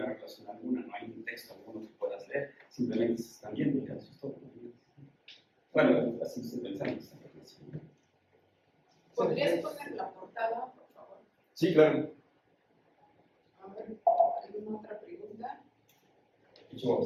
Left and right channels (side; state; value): both; identical; correlation 1.00